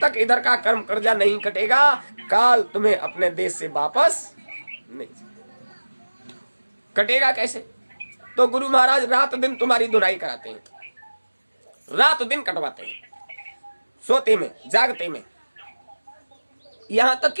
तक इधर का कर्म कर्जा नहीं कटेगा, काल तुम्हें अपने देश से वापस नहीं कटेगा। कैसे? तो गुरु महाराज रात दिन तुम्हारी धुनाई कराते हैं, रात दिन कटवाते हैं, सोते में, जागते में, यहां तक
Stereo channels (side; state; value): both; inverted; correlation -1.00